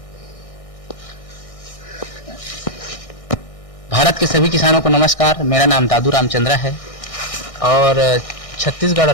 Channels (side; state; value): right; late; 1.6 ms